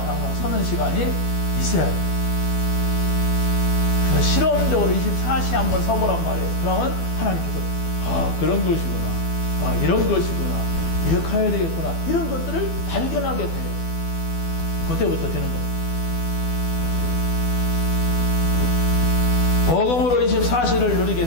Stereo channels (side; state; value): right; late; 12 ms